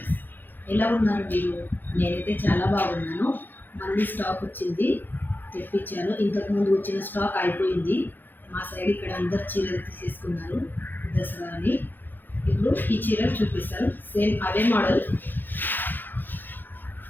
ఎలా ఉన్నారు మీరు? నేనైతే చాలా బాగున్నాను. మళ్ళీ స్టాక్ వచ్చింది, తెప్పించాను. ఇంతకుముందు వచ్చిన స్టాక్ అయిపోయింది. మా సైడ్ ఇక్కడ అందరు చీరలు తీసేసుకున్నారు దసరా అని. ఇప్పుడు ఈ చీరలు చూపిస్తాను. సేమ్ అవే మోడల్,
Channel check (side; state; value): right; late; 0.090 ms